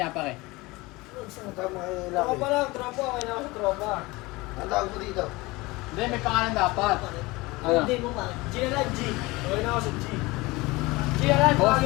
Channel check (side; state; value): right; quieter; 22.2 dB